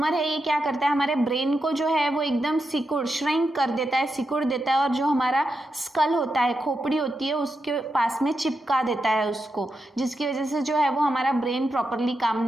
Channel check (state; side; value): normal; both; correlation 0.87